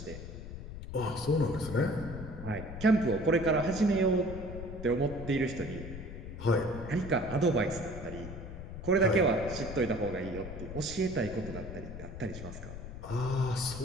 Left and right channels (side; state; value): left; noise; rumble, 10 dB below the sound